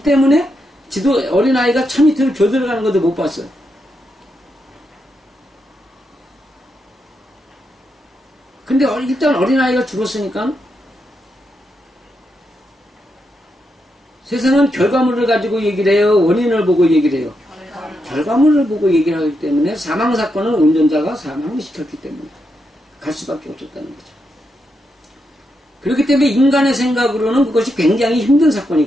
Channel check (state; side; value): normal; both; correlation 0.83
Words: 때문에 어린아이가 차 밑으로 겨들어가는 것도 못 봤어요. 근데 일단 어린아이가 죽었으니까 세상은 결과물을 가지고 얘기를 해요? 원인을 보고 얘기를 해요? 결과물을 보고 얘기를 하기 때문에 사망사건은 운전자가 사망을 시켰기 때문에 갈 수밖에 없었다는 거죠. 그렇기 때문에 인간의 생각으로는 그것이 굉장히 힘든